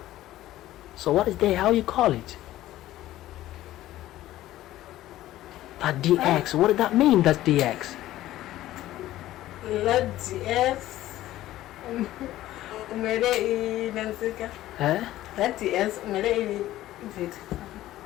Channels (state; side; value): quieter; right; 14.7 dB